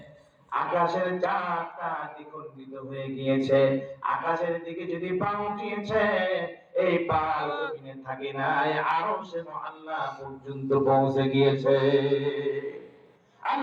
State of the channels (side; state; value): both; identical; correlation 1.00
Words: আকাশের চারটা দ্বিখণ্ডিত হয়ে গিয়েছে, আকাশের দিকে যদি পা উঠিয়েছে, এই পা জমিনে থাকে নাই, আরশে আল্লাহ পর্যন্ত পৌঁছে গিয়েছে।